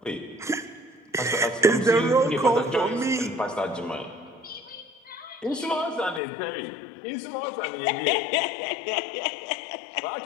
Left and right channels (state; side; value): drops out; right; at 6.2 s